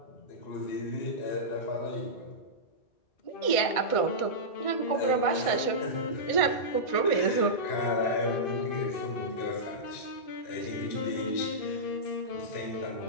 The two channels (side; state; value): right; late; 1.6 ms